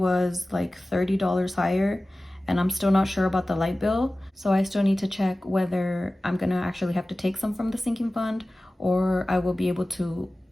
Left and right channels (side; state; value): both; normal; correlation 0.97